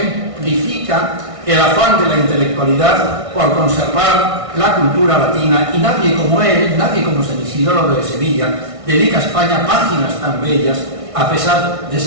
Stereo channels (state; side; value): late; left; 1.6 ms